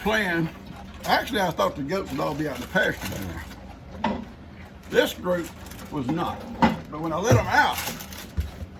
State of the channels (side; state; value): both; identical; correlation 1.00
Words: Actually, I thought the goats would all be out in the pasture down there. This group was not. But when I let them out,